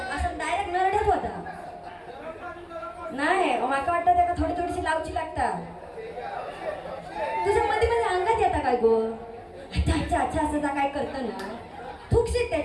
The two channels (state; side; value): identical; both; correlation 1.00